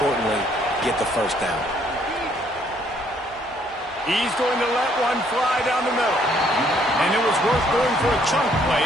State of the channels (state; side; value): normal; both; correlation 0.66